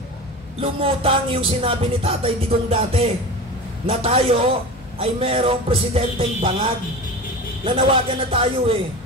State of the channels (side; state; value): both; normal; correlation 0.31